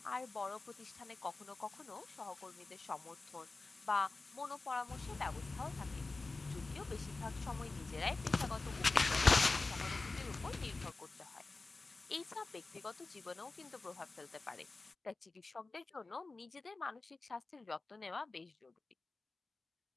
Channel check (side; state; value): right; quieter; 3.5 dB